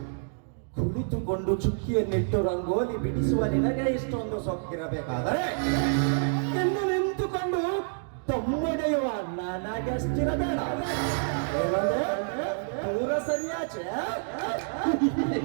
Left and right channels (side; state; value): left; silent; digital silence